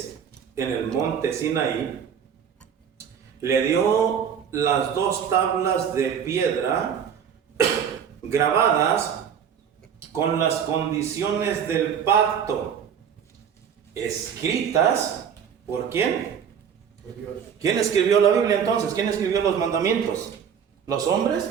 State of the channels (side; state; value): left; quieter; 7.9 dB